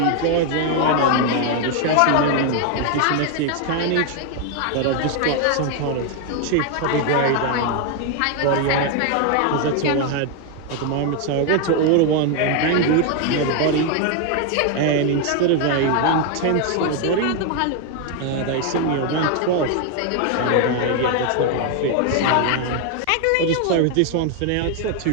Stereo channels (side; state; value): both; different; correlation 0.01